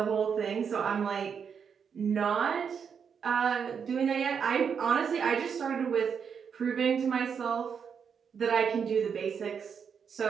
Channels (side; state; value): left; quieter; 6.8 dB